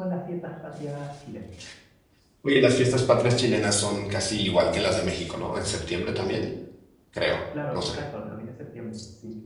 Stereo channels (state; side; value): identical; both; correlation 1.00